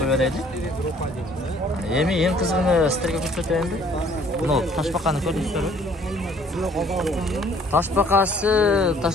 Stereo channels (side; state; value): both; normal; correlation 0.58